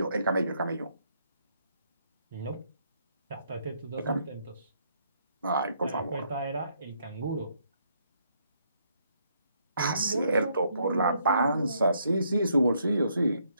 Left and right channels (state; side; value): inverted; both; correlation -0.72